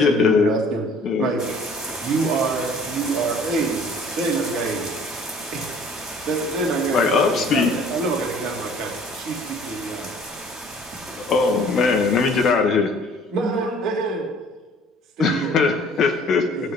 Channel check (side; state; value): both; normal; correlation 0.53